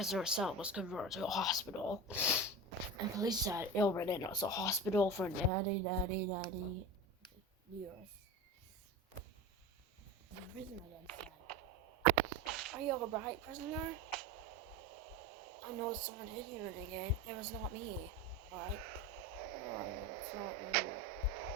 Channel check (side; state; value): both; normal; correlation 0.26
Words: cell was converted to a hospital, and police said it already was a hospital for 90 years. The prisoner then said, "Are you alright, prisoner? I know someone hit you again. It was not me, right?" "Oh, it's not me.